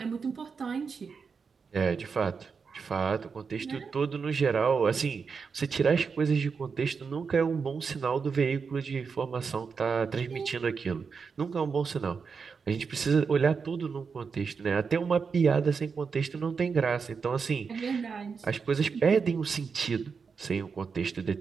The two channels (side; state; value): left; quieter; 5.5 dB